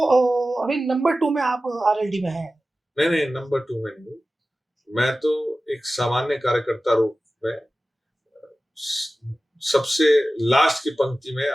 अभी नंबर 2 में आप आरएलडी में हैं। नहीं, नंबर 2 में नहीं। मैं तो एक सामान्य कार्यकर्ता रूप में सबसे लास्ट की पंक्ति में,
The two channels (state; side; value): normal; both; correlation 0.95